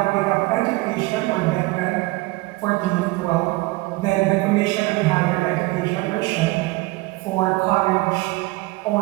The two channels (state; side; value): quieter; left; 21.9 dB